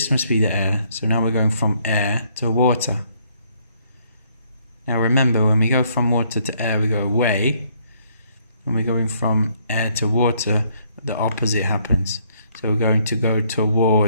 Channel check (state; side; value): inverted; both; correlation -0.68